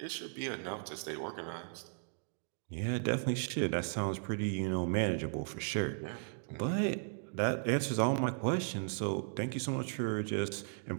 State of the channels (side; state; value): left; silent; digital silence